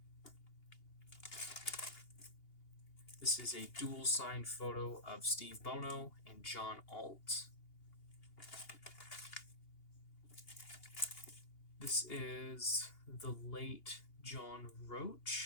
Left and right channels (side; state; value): right; late; 2.8 ms